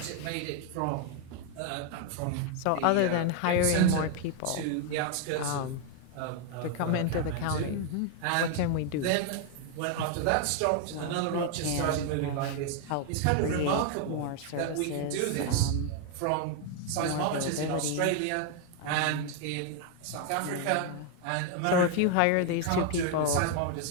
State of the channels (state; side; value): different; both; correlation 0.00